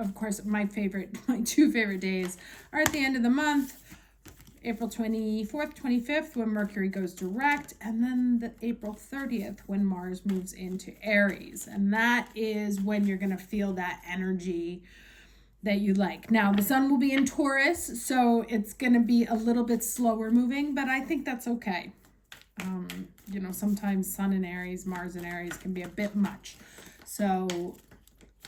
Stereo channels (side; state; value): both; identical; correlation 1.00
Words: course, my two favorite days are at the end of the month, April 24th, 25th, when Mercury goes direct, and then the April 30th, when Mars moves into Aries. And that is when you're going to feel that energy that you like. Now, the Sun will be in Taurus, so it's going to be a little bit slower moving, but I think that's okay. Sometimes Sun in Aries, Mars in Aries can be a bit much. So